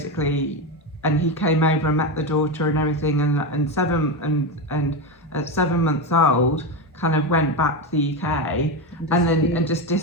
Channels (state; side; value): normal; both; correlation 0.14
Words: and he came over and met the daughter and everything, and at 7 months old, kind of went back to the UK and just